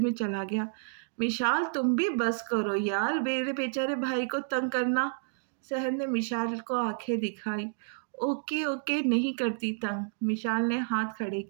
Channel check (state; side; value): silent; left; digital silence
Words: चला गया। मिशाल, तुम भी बस करो यार, मेरे बेचारे भाई को तंग करना। सहर ने मिशाल को आंखें दिखाई। ओके ओके, नहीं करती तंग। मिशाल ने हाथ खड़े